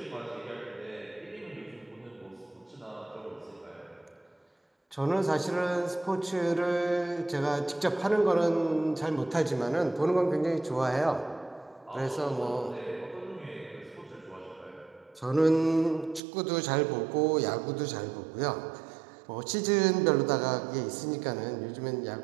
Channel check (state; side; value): drops out; left; at 16.2 s